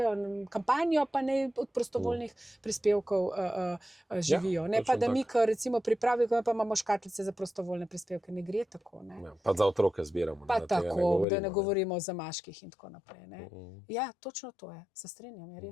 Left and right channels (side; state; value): right; drops out; at 11.2 s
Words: kampanjo, pa naj od prostovoljnih prispevkov živijo. Ne pa, da mi, ko recimo pripravimo, pa imamo škatlice za prostovoljne prispevke. Ne gre tako. Pa za otroke zbiramo. Pa tako, da ne govorimo o zamaških in tako naprej. Ja, točno to je. Se strinjam, je